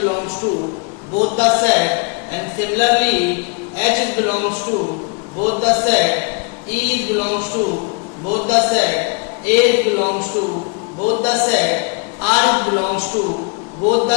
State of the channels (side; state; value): right; quieter; 34.9 dB